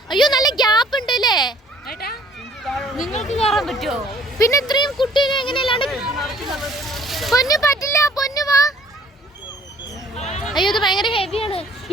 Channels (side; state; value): both; normal; correlation 0.57